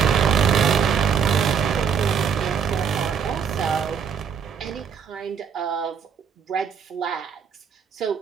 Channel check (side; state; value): left; quieter; 7.1 dB